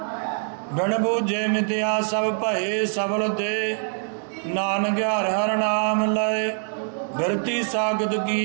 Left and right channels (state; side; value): silent; left; digital silence